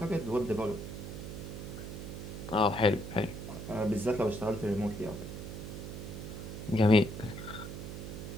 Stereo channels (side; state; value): right; noise; hum, 8 dB below the sound